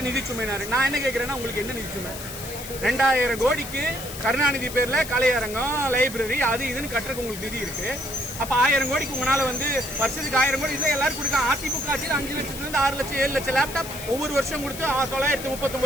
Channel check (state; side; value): noise; left; hiss, 11 dB below the sound